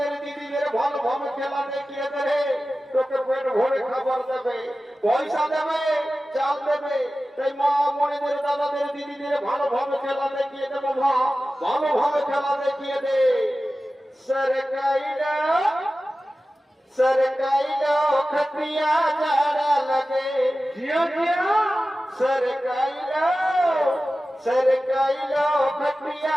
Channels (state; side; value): normal; both; correlation 0.95